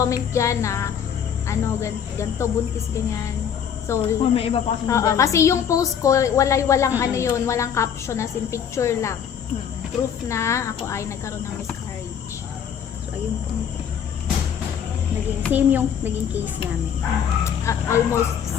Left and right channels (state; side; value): quieter; right; 8.1 dB